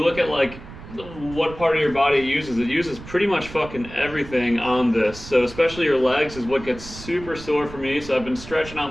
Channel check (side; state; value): right; noise; rumble, 15 dB below the sound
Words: look at like what part of your body it uses pretty much fucking everything on this. So especially your legs is what gets super sore for me. So I've been stretching